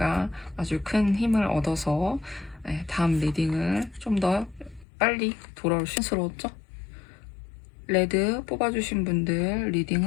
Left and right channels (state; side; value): drops out; right; at 4.9 s